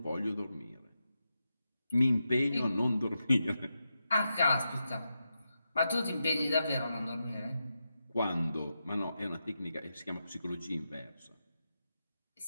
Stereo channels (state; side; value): inverted; both; correlation -0.88